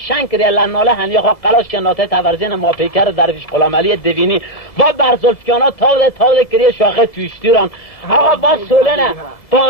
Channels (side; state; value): right; late; 2.0 ms